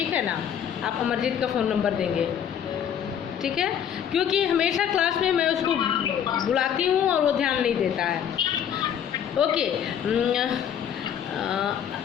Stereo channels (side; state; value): right; quieter; 8.9 dB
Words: है ना? आप अमरजीत का फ़ोन नंबर देंगे, ठीक है? क्योंकि हमेशा क्लास में मैं उसको बुलाती हूँ और वो ध्यान नहीं देता है। ओके,